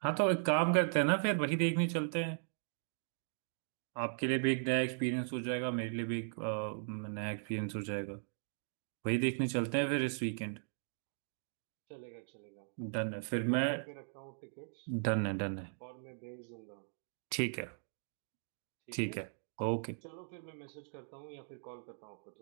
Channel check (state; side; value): silent; left; digital silence